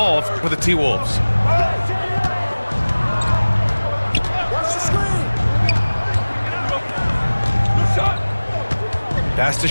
for the T-Wolves. Pass to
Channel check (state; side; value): inverted; both; correlation -1.00